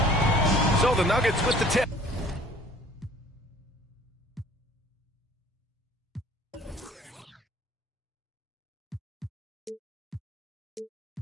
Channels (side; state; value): both; normal; correlation 0.52